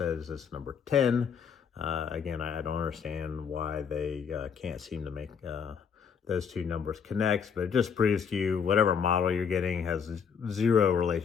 it's number 10. Again, I don't understand why they can't seem to make those two numbers connect, but it just proves to you whatever model you're getting has zero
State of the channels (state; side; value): quieter; right; 6.8 dB